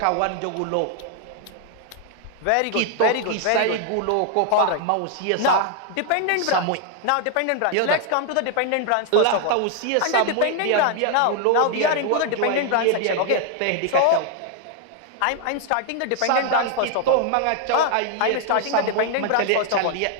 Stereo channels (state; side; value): different; both; correlation 0.00